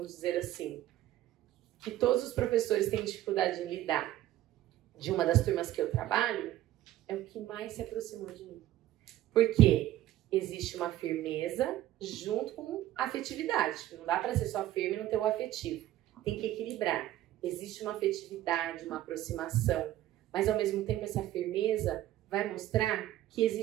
dizer assim, que todos os professores têm dificuldade em lidar, de uma das turmas que eu trabalho, é o que mais se aproximou de mim. Porque existe uma firmeza junto com afetividade. Não dá para ser só firme e não ter o afetivo. Tem que equilibrar. Existe uma afetividade, uma aproximação, mas ao mesmo tempo essa firmeza vai mostrar que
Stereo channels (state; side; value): quieter; left; 13.9 dB